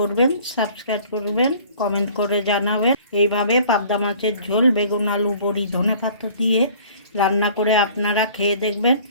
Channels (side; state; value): both; inverted; correlation -0.51